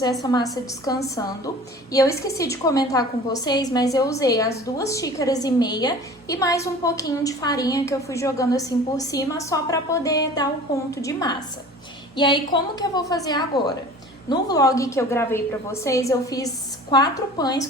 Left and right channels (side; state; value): both; normal; correlation 0.43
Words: essa massa descansando. E eu esqueci de comentar com vocês, mas eu usei as 2,5 xícaras e mais um pouquinho de farinha que eu fui jogando assim por cima só para poder dar um ponto de massa. E aí como que eu vou fazer agora? No vlog que eu gravei pra vocês, eu fiz 4 pães